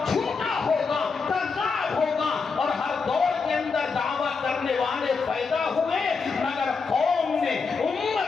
جھوٹا ہوگا، کذاب ہوگا، اور ہر دور کے اندر دعویٰ کرنے والے پیدا ہوئے، مگر قوم نے،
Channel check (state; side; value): quieter; right; 4.9 dB